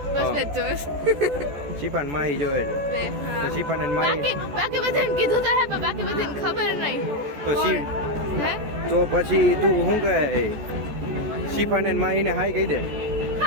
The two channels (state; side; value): late; left; 14 ms